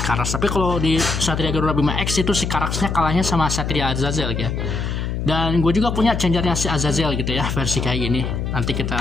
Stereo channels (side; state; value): left; noise; hum, 3 dB below the sound